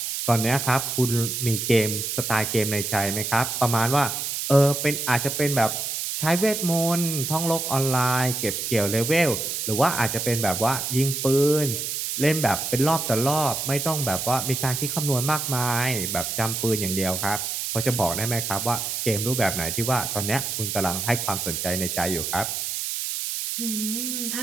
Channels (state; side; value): noise; right; hiss, 3 dB below the sound